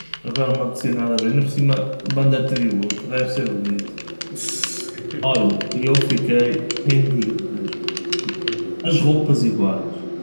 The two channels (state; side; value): inverted; both; correlation -1.00